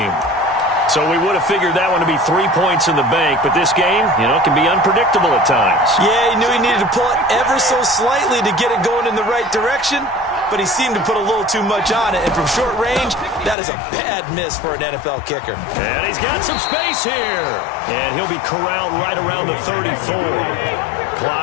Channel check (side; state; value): right; drops out; at 13.6 s